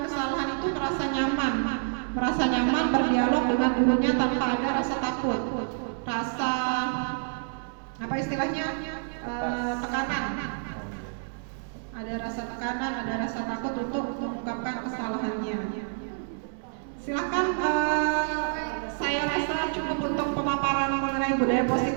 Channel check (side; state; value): left; silent; 59 dB below the other